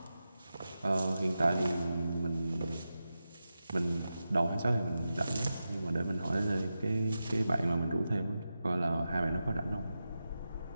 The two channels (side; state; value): both; inverted; correlation -0.91